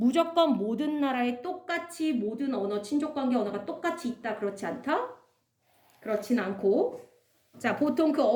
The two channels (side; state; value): both; identical; correlation 1.00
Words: 모든 나라에 똑같이 모든 언어, 친족 관계 언어가 똑같이 있다 그렇지 않다? 그렇진 않고 자, 보통 그